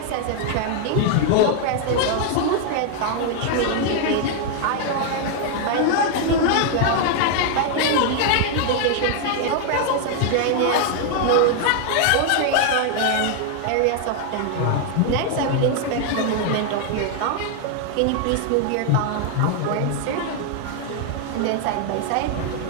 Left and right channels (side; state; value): both; different; correlation 0.00